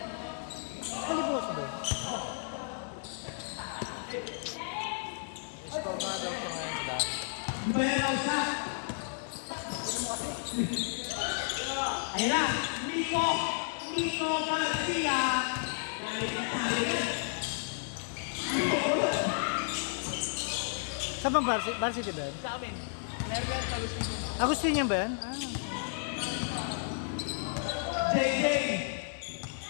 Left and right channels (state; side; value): silent; right; digital silence